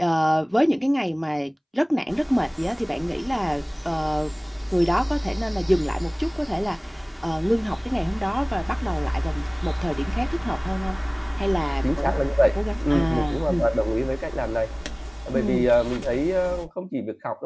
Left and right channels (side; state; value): both; identical; correlation 1.00